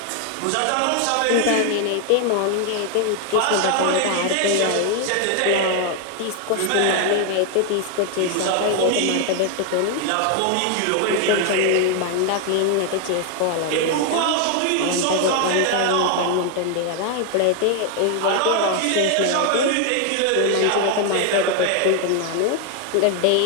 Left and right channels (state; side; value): different; both; correlation 0.00